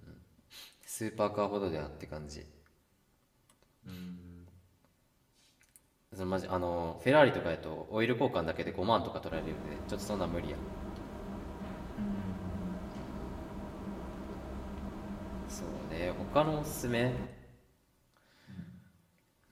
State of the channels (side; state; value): both; identical; correlation 1.00